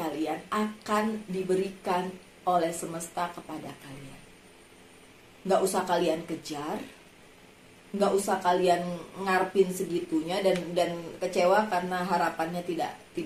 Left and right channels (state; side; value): identical; both; correlation 1.00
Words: akan diberikan oleh semesta kepada kalian. Nggak usah kalian kejar, nggak usah kalian ngarepin segitunya dan kecewa karena harapannya tidak